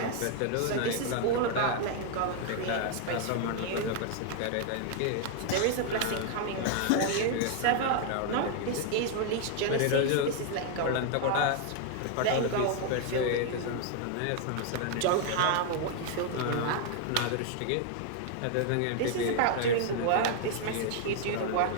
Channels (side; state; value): both; different; correlation 0.00